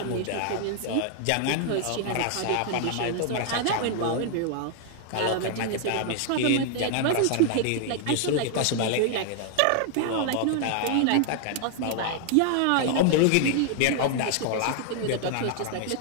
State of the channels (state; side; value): different; both; correlation 0.00